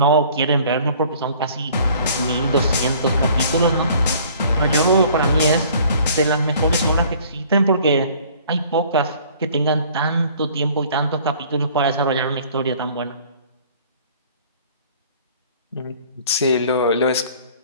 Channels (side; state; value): both; inverted; correlation -0.53